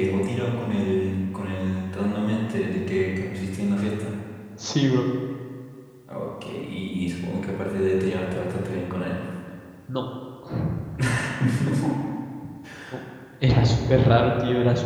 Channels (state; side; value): identical; both; correlation 1.00